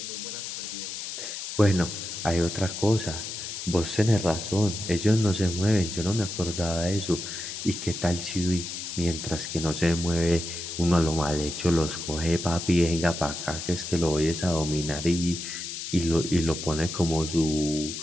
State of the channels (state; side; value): noise; left; hiss, 7 dB below the sound